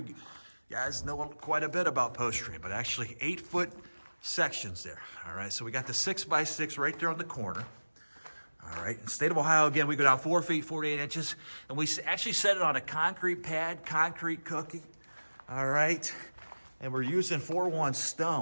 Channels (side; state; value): both; inverted; correlation -1.00